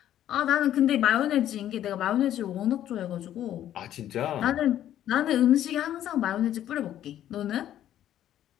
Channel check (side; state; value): right; quieter; 11.6 dB